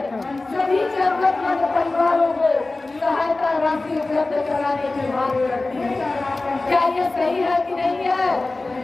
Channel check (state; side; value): quieter; right; 3.2 dB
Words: सभी जरूरतमंद परिवारों को सहायता राशि उपलब्ध कराने की मांग करती है। क्या ये सही है कि नहीं है?